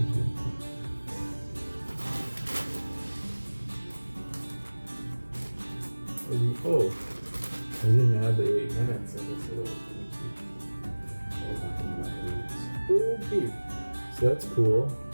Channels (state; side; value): inverted; both; correlation -1.00